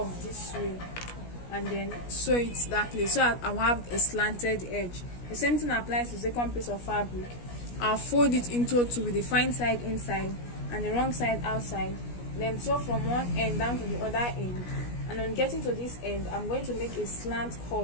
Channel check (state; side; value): late; right; 17 ms